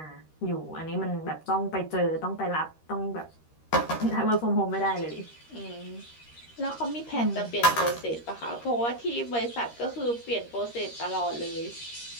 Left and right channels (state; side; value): late; right; 13 ms